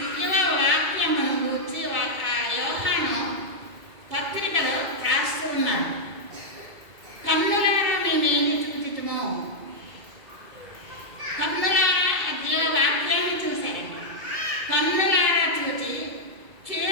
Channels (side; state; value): left; late; 2.2 ms